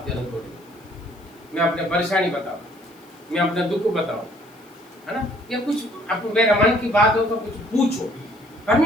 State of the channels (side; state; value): left; noise; hiss, 29 dB below the sound